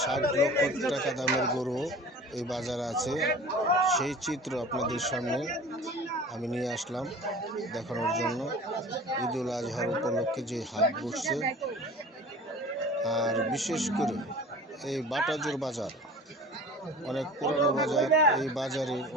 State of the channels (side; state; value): both; normal; correlation 0.40